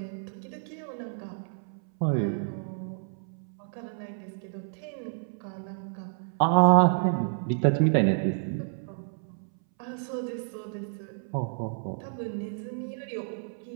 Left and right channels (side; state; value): left; silent; 58 dB below the other